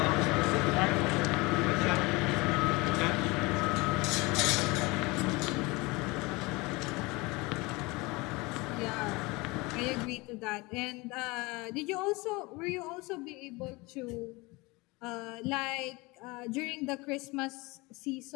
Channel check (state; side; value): quieter; right; 24.4 dB